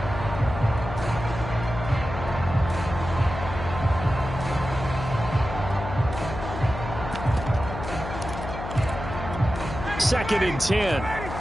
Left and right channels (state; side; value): noise; left; hum, 8 dB below the sound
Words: Second and 10.